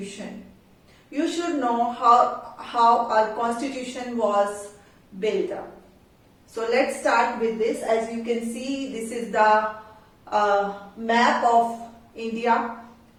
You should know how our constitution was built up. So let's start with this. As you can see, this is the map of India,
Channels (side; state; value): both; identical; correlation 1.00